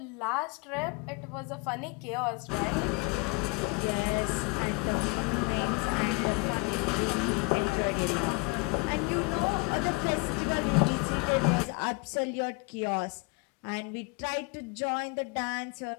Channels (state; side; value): quieter; right; 28.2 dB